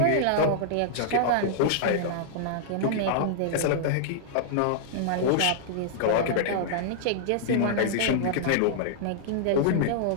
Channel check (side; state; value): both; different; correlation -0.02